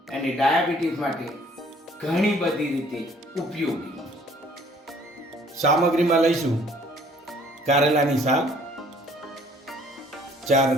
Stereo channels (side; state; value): both; normal; correlation 0.58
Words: અને ડાયાબિટીસ માટે ઘણી બધી રીતે ઉપયોગી. સામગ્રીમાં લઈશું કારેલાની સાલ, 4